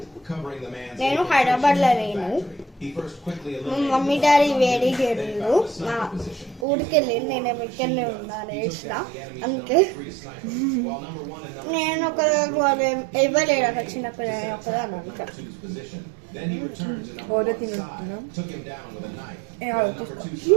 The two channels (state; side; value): drops out; left; at 6.7 s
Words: నేను హైదరాబాద్లో లేను. మమ్మీ డాడీ వేడి చేయలేదు. మా ఊరికి వెళ్ళి నేను ఇక్కడనే ఉన్నాను వేసిన. అందుకే నేను ఒక ఇవ్వలేడు అక్కడ చిన్నపిల్లలు ఒకదాన్ని అనుకో. ఓరో తింటున్నాం